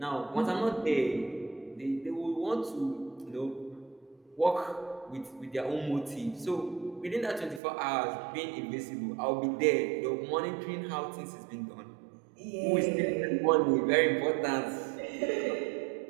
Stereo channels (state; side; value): drops out; left; at 7.6 s